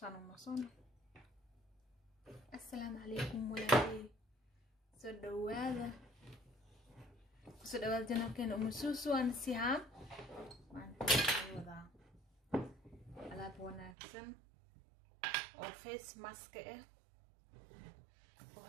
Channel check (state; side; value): drops out; left; at 14.0 s